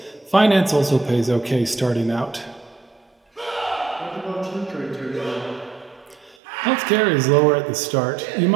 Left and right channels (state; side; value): drops out; left; at 6.4 s